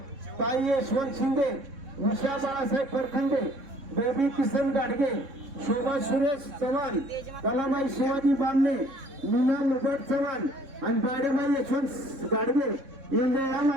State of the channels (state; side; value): late; left; 3.7 ms